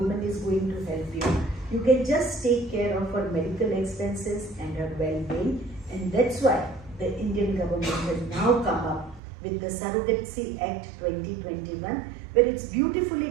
is going to help you, you can just take care of her medical expenses and her well-being. And that's why the Indian government has now come up with the Surrogacy Act 2021, where it's beautifully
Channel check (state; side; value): drops out; left; at 9.2 s